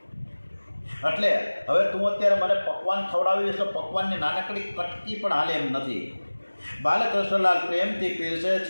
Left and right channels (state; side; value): inverted; both; correlation -1.00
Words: એટલે હવે તું અત્યારે મને પકવાન ખવડાવી દઈશ તો પકવાનની નાનકડી કટકી પણ હાલે એમ નથી. બાલકૃષ્ણલાલ પ્રેમથી પીરસે